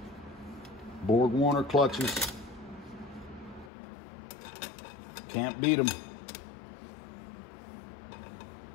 Borg-Warner clutches. Can't beat them.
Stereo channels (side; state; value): right; drops out; at 3.7 s